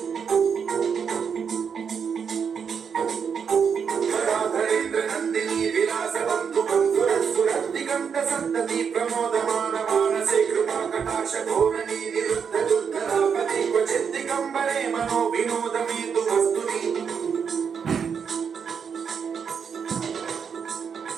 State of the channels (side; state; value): left; quieter; 6.7 dB